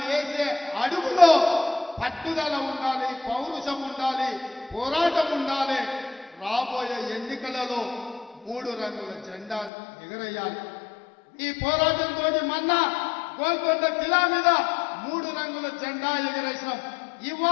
వేసే అడుగులో పట్టుదల ఉండాలి, పౌరుషం ఉండాలి, పోరాటం ఉండాలి. రాబోయే ఎన్నికలలో 3 రంగుల జెండాను ఎగరేయాలి. ఈ పోరాటంతో మొన్న గోల్కొండ కిలా మీద 3 రంగుల జెండా ఎగరేసినాం.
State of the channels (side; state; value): right; drops out; at 9.7 s